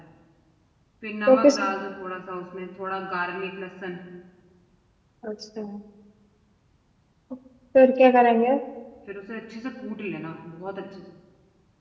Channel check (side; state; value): both; identical; correlation 1.00